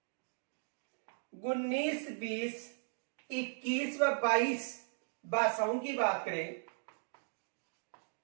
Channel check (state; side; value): silent; left; digital silence